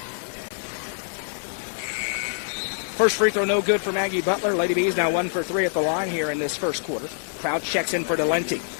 First free throw no good for Maggie Butler. Lady Bees now 1 for 3 at the line here in this first quarter. Crouch checks in for Delente.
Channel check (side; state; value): right; silent; 62 dB below the other